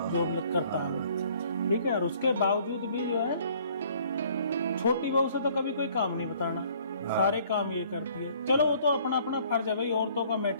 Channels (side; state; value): both; inverted; correlation -0.59